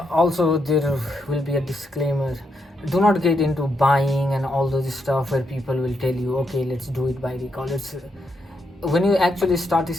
Also, there will be a disclaimer. Do not get into buying and all those stuff where people will tell you, okay, let's do it by recall. It's when you actually start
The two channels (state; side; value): normal; both; correlation 0.81